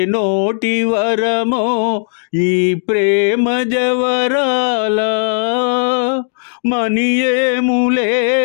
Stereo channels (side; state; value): right; silent; digital silence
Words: నోటి వరమో ఈ ప్రేమ జవరాలా. మనియేములే